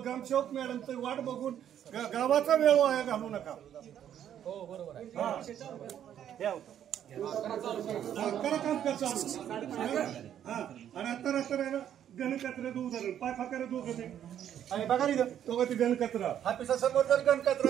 ग्रामसेवक मॅडमचं वाट बघून गावाचा वेळ वाया घालू नका. हो बरोबर आहे. करा काम चालू. हा आणि आता रस्ता गणकचऱ्याचं उदाहरण पाय फाकारे दोघं ते आणि बघा रे दोघं ते गणकचरा ऑफिसासमोर जर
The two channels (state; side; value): quieter; left; 10.1 dB